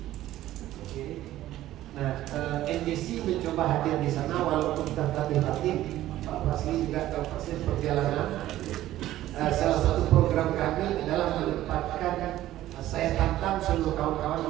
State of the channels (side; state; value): left; quieter; 14.2 dB